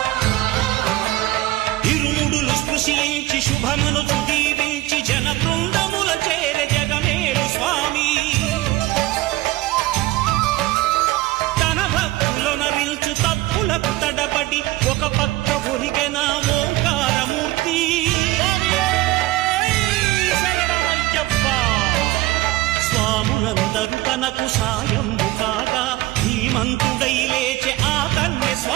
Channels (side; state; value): left; quieter; 17.6 dB